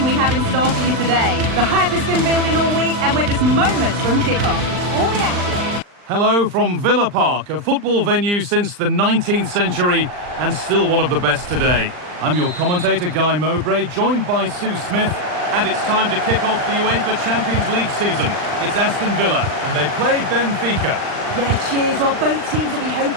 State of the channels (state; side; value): late; left; 39 ms